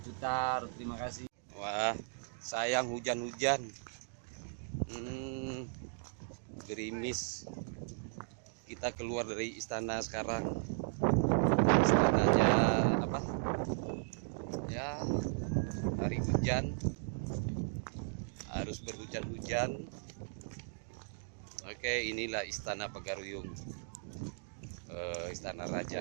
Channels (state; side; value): silent; left; digital silence